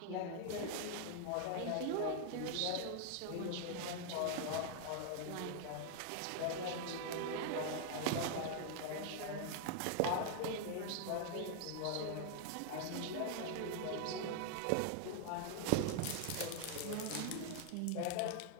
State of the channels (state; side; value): different; both; correlation 0.00